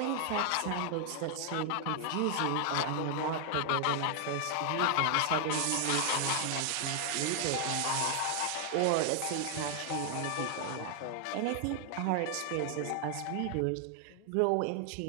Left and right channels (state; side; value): different; both; correlation 0.00